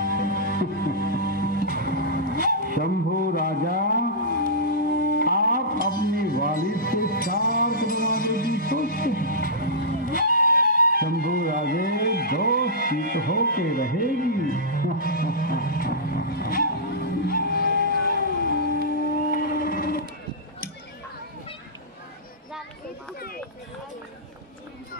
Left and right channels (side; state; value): both; normal; correlation -0.15